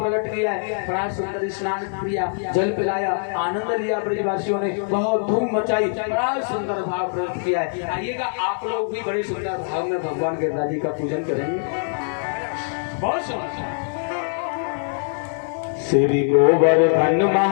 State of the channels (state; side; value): silent; right; 64 dB below the other